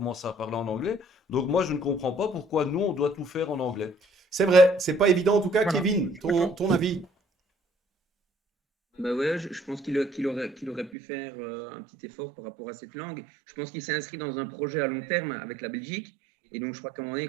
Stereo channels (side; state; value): left; drops out; at 10.9 s